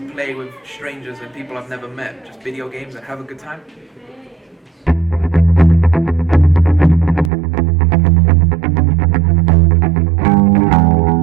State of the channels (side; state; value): left; drops out; at 7.3 s